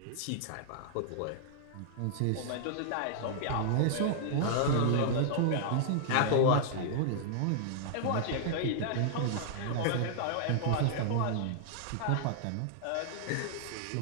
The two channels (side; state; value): both; different; correlation -0.01